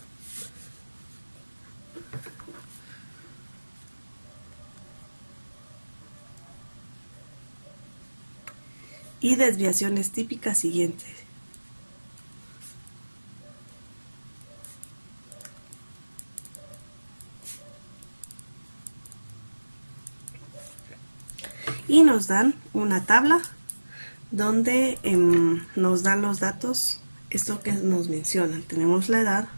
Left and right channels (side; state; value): both; inverted; correlation -1.00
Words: y desviaciones típicas siguientes. Y nos dan una tabla donde nos dan los datos, esto que nos mencionan. Tenemos la edad,